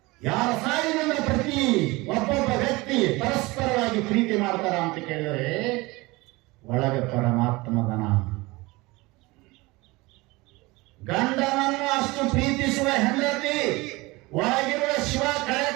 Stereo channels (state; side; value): quieter; left; 22.7 dB